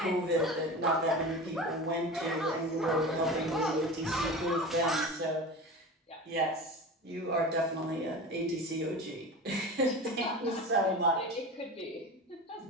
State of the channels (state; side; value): normal; both; correlation 0.31